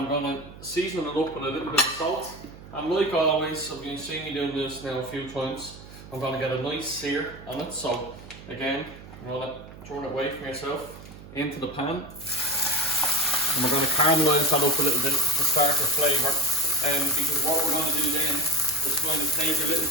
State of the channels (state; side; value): noise; right; hum, 17 dB below the sound